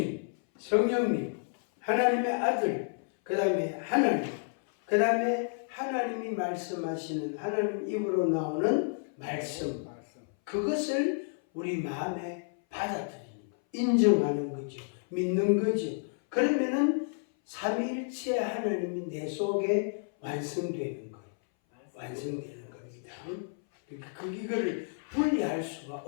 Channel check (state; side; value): silent; right; 57 dB below the other